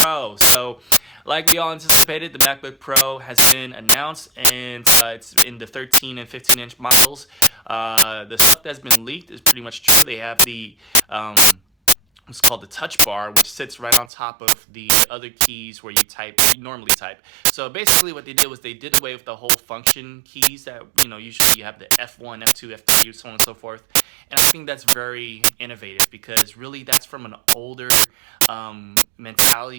So, like we all anticipated, the MacBook Pro has been announced, and it's in the 13 and 15-inch models. The stuff that's been leaked is pretty much true. They have the what's called the touch bar, which sits right on top of the other keys where you normally type. So basically what they did was they did away with the whole function keys that, usually you have the F1, F2, F3, so on and so forth. And I think that's very innovative because really that's from an older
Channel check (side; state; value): left; drops out; at 14.1 s